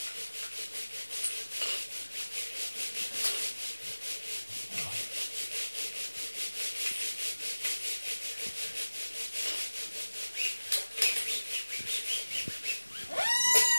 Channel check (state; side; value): inverted; both; correlation -1.00